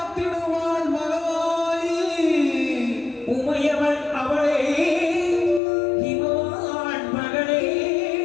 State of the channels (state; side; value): drops out; right; at 5.6 s